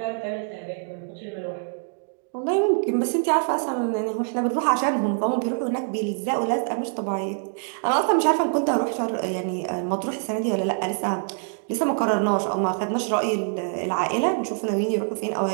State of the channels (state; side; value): silent; left; 62 dB below the other